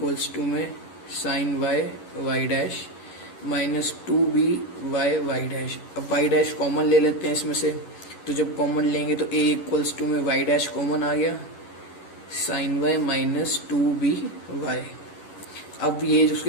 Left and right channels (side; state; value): right; late; 11 ms